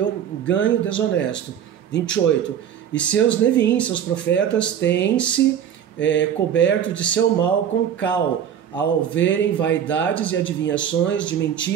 desonesto. 28. E seus Neviim, seus profetas, têm-se coberto de seu mal com cal, ao verem vaidades e adivinhações de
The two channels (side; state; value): left; quieter; 9.2 dB